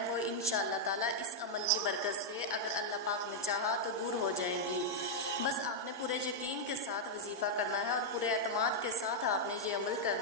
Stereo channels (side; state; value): both; normal; correlation -0.03